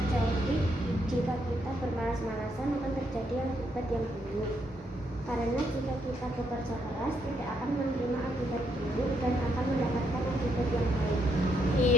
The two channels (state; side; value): normal; both; correlation 0.76